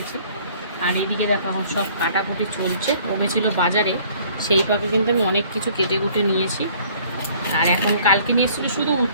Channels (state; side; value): inverted; both; correlation -0.56